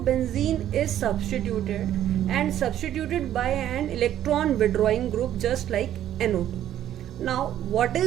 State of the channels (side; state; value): left; quieter; 11.6 dB